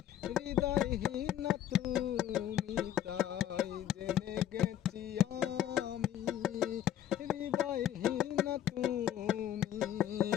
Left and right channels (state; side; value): quieter; right; 11.2 dB